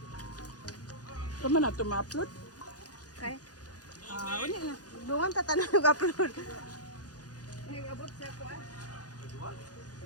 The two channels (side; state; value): right; late; 0.68 ms